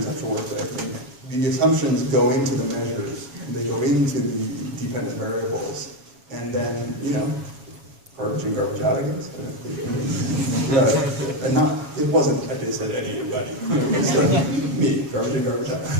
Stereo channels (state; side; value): late; left; 7.3 ms